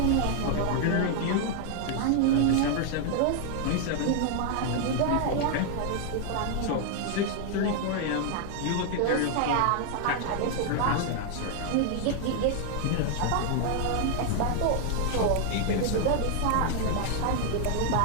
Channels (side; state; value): both; different; correlation 0.00